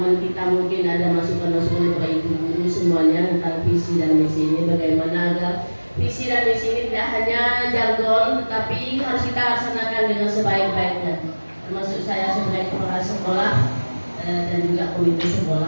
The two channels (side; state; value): both; inverted; correlation -1.00